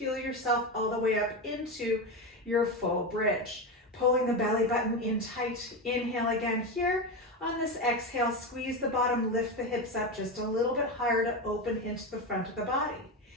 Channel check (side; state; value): both; normal; correlation 0.17